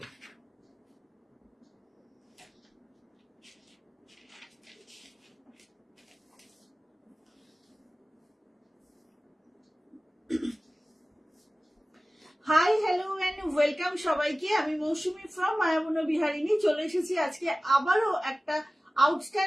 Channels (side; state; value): both; normal; correlation 0.97